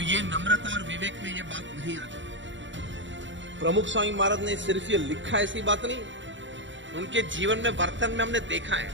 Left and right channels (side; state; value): left; late; 0.54 ms